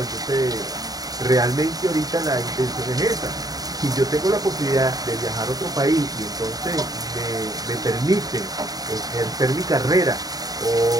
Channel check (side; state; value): left; late; 0.18 ms